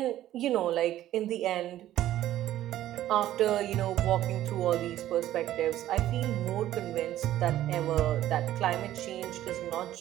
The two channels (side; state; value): left; quieter; 13.3 dB